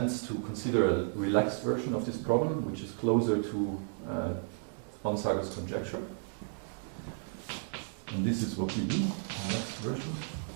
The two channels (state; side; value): silent; left; digital silence